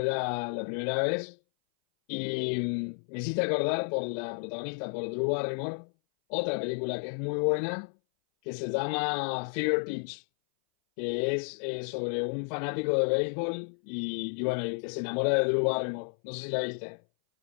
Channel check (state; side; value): silent; right; 57 dB below the other